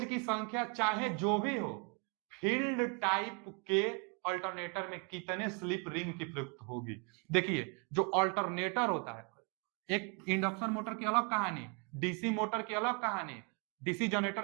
की संख्या चाहे जो भी हो, फील्ड टाइप के अल्टरनेटर में कितने स्लिप रिंग की प्रयुक्त होगी। देखिए जो अल्टरनेटर होता है, एक इंडक्शन मोटर की अलग कहानी, डीसी मोटर की अलग कहानी, डीसी जनरेटर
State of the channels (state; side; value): quieter; left; 33.2 dB